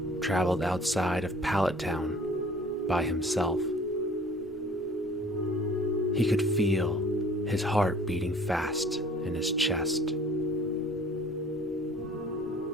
traveled outside of Pallet Town by himself. He could feel his heart beating fast in his chest.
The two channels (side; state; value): both; normal; correlation 0.51